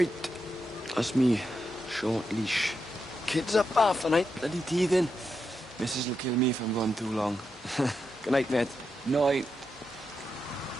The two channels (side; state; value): both; normal; correlation 0.85